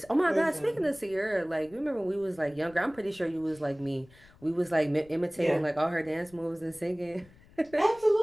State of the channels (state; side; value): noise; left; rumble, 26 dB below the sound